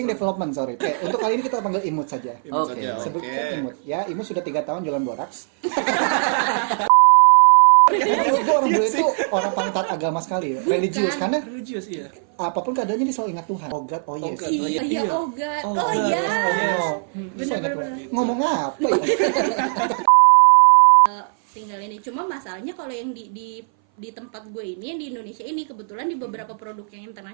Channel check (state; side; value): silent; left; 60 dB below the other